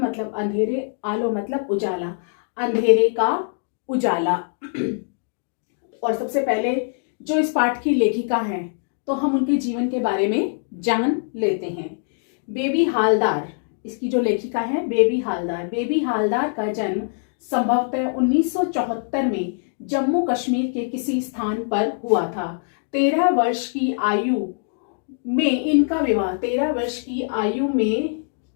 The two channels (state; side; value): silent; right; digital silence